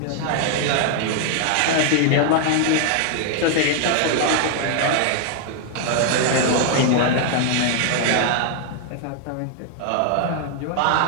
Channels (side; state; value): both; different; correlation 0.00